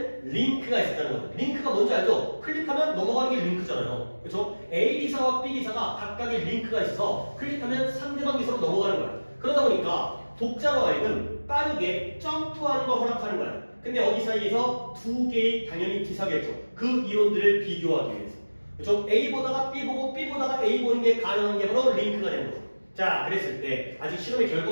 링크가 있었다는 거죠 링크가 뭔지 알죠? 클릭하면 넘어가는 게 링크잖아요 그렇죠? A 기사와 B 기사가 각각의 링크가 있어서 클릭하면 상대방 기사로 넘어가는 거예요 그러다 보니까 독자로 하여금 빠르게 점프하는 걸 허락하는 거예요 근데 어디 사이에서 2개의 당연히 기사겠죠 그 이론들을 비교하기 위해서 그렇죠? A 보다가 B 보고 B 보다가 A 보는 게 가능한 게 바로 링크가 되는 거죠 자 그랬을 때 아직 실험의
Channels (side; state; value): both; inverted; correlation -1.00